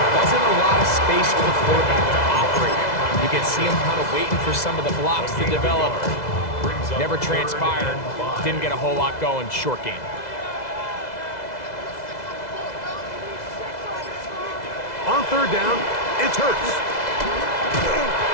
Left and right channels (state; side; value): late; right; 2.0 ms